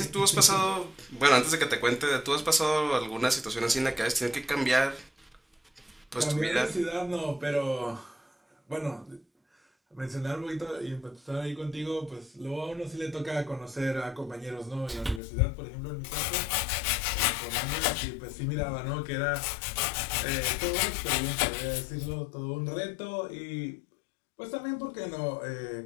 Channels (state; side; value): drops out; right; at 15.2 s